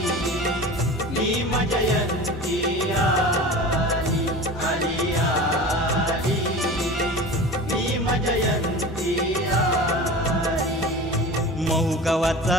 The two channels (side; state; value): both; normal; correlation 0.35